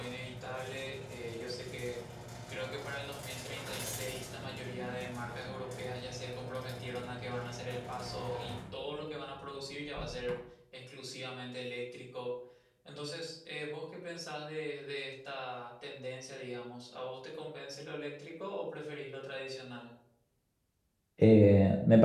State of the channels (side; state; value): both; identical; correlation 1.00